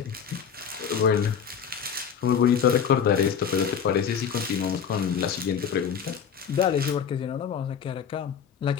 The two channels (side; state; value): right; quieter; 7.5 dB